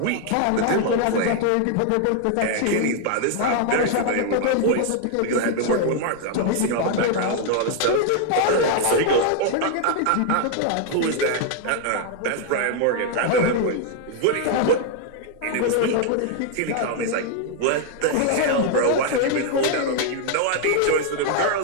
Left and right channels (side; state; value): both; different; correlation 0.00